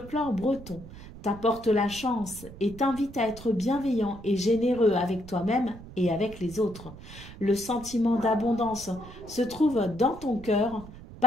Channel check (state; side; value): noise; right; rumble, 16 dB below the sound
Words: breton, t'apporte la chance et t'invite à être bienveillant et généreux avec toi-même et avec les autres. Le sentiment d'abondance se trouve dans ton cœur,